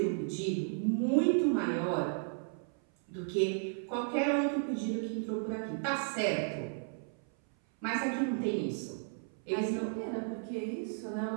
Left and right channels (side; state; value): left; silent; 55 dB below the other